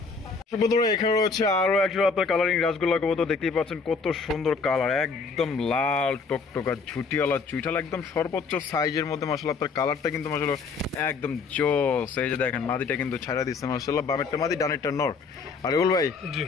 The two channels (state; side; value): quieter; right; 4.8 dB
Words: বন্ধুরা, এখানে রয়েছে আরো একটা আপনার কালারিং রাসগোল্লা কবুতর, দেখতেই পাচ্ছেন কত সুন্দর কালার, একদম লাল টকটকা ঝুটিওয়ালা চুইঠাল, একদম সর্বোচ্চ সাইজের মধ্যে। মাশাআল্লাহ, আপনার কালারটা কিন্তু মাশাআল্লাহ একদম জোস। এই যে দেখেন মাদিটা কিন্তু ছাড়া দিচ্ছে। মাশাআল্লাহ, বামেরটা মাদি, ডানেরটা নর। আর রুল ভাই,